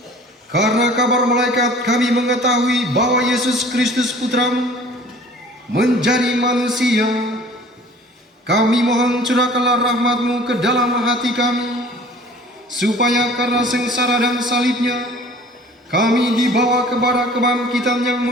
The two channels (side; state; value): both; normal; correlation 0.48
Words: karena kabar malaikat kami mengetahui bahwa Yesus Kristus Putramu menjadi manusia, kami mohon curahkanlah rahmat-Mu ke dalam hati kami, supaya karena sengsara dan salibnya, kami dibawa kepada kebangkitan yang